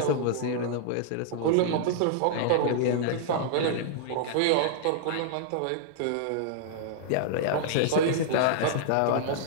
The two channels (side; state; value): both; different; correlation -0.01